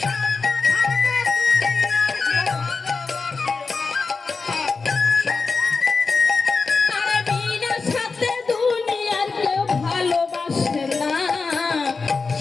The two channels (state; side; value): quieter; right; 4.4 dB